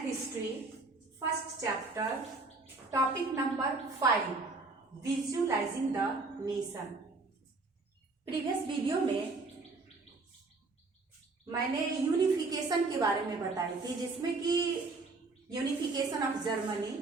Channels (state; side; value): quieter; left; 3.6 dB